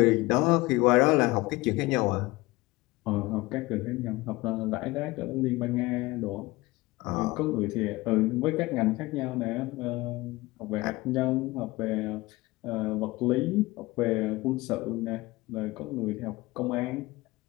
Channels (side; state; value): right; quieter; 20.8 dB